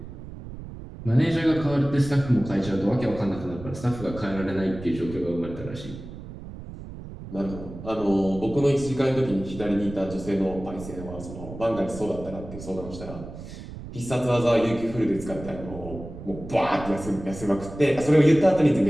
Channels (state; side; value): noise; right; rumble, 12 dB below the sound